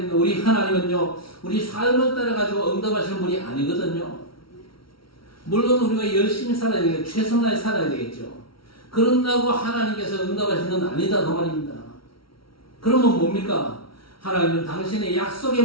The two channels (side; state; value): right; late; 0.74 ms